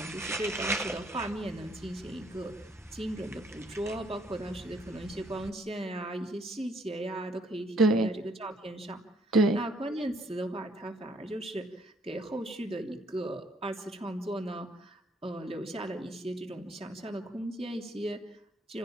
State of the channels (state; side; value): normal; both; correlation 0.66